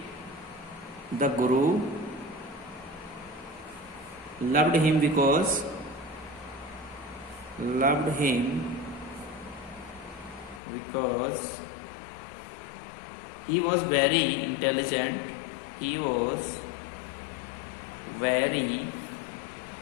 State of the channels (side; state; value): right; drops out; at 10.6 s